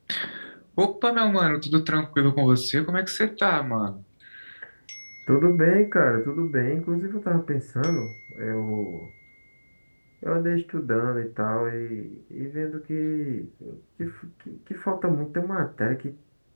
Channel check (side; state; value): both; inverted; correlation -1.00